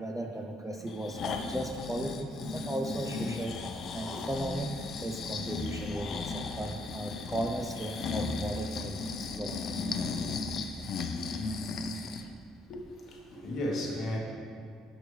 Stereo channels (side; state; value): both; normal; correlation 0.72